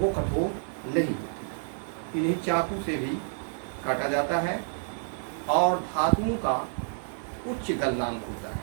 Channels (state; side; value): silent; left; digital silence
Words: कठोर नहीं होती। इन्हें चाकू से भी काटा जाता है, और धातुओं का उच्च गलनांक होता है।